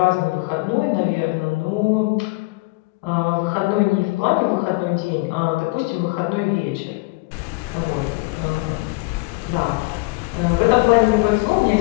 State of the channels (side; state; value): right; quieter; 25.6 dB